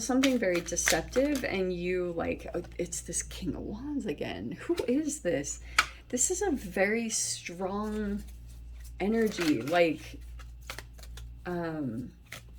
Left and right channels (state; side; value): identical; both; correlation 1.00